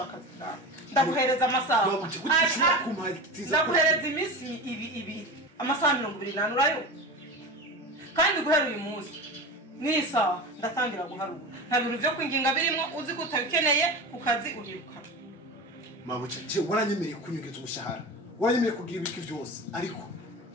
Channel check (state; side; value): normal; both; correlation 0.28